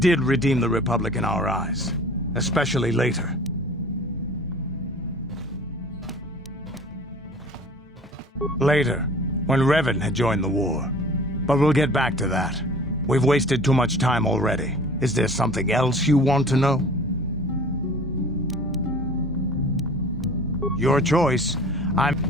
redeem the Republic in our eyes, especially later. Later, when Revan had joined the war. But we'll get back to that. We've wasted too much time already. Is there something else you want to know? Your choice.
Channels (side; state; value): both; normal; correlation 0.45